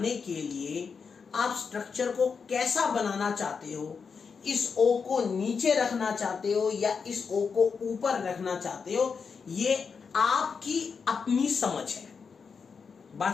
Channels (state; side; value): quieter; right; 5.7 dB